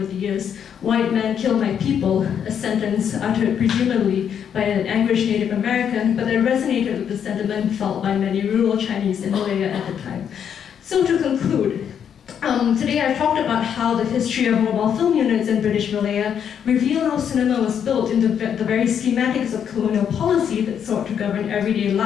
the years. "White man kill my people," a sentence uttered presumably by an anguished Native American, but that resonated with the sentiment felt by many rural Chinese in Malaya at the time. So to conclude, today I've talked about how the history of mobile film units in British Malaya reveal how cinema was built in the very schematics of colonial policy that sought to govern everyday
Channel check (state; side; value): quieter; right; 8.3 dB